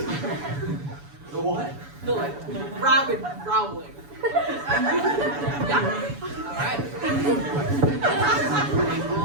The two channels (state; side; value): late; left; 7.0 ms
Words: The what? The rabid growling. Yeah. All right.